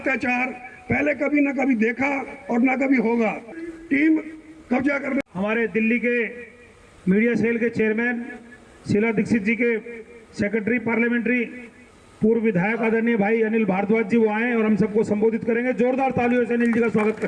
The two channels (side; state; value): both; identical; correlation 1.00